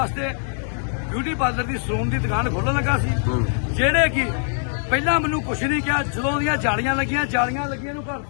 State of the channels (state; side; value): silent; right; 64 dB below the other